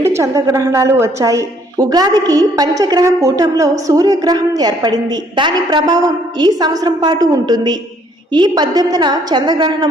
చంద్రగ్రహణాలు వచ్చాయి. ఉగాదికి పంచగ్రహ కూటంలో సూర్యగ్రహం ఏర్పడింది. దాని ప్రభావం ఈ సంవత్సరం పాటు ఉంటుంది. ఈ 18న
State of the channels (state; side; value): normal; both; correlation 0.64